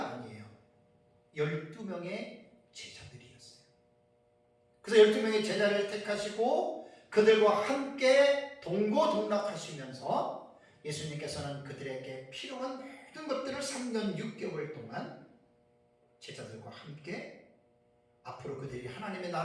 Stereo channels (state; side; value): identical; both; correlation 1.00